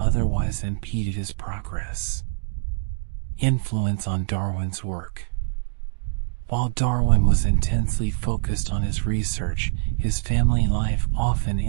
impeded his progress. Influence on Darwin's work. While Darwin was intensely focused on his research, his family life often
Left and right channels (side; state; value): left; silent; digital silence